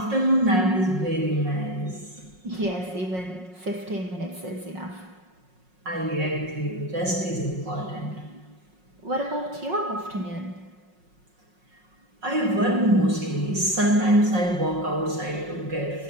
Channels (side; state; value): left; late; 5.5 ms